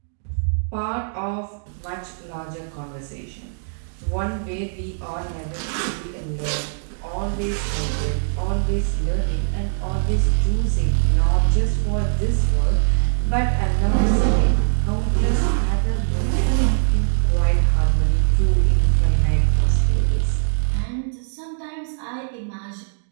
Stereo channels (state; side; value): silent; left; digital silence